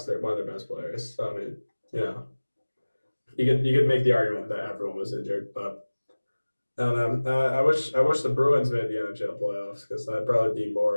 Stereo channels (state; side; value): inverted; both; correlation -1.00